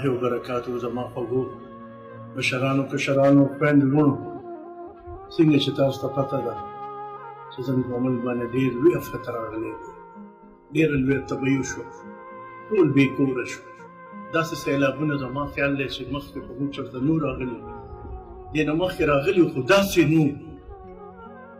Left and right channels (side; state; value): both; identical; correlation 1.00